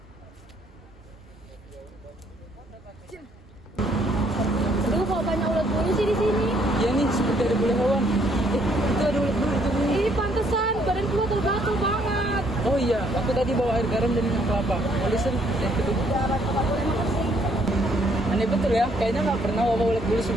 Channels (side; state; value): both; normal; correlation 0.67